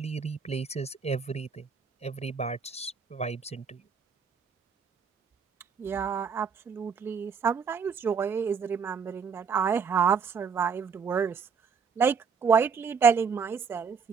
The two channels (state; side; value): quieter; left; 6.1 dB